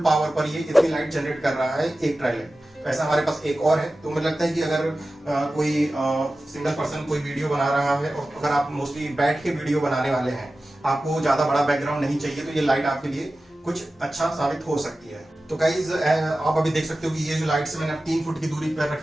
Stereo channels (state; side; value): normal; both; correlation 0.95